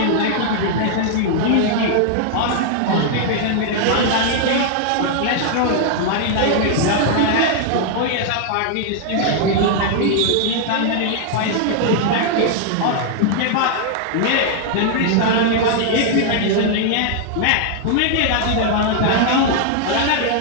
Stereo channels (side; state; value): both; different; correlation 0.00